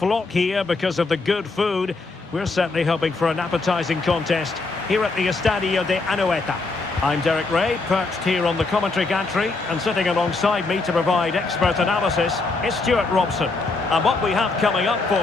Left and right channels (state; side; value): quieter; right; 3.7 dB